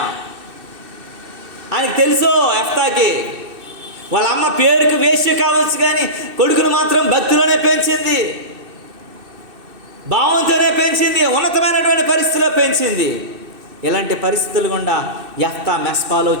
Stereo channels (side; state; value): left; late; 2.6 ms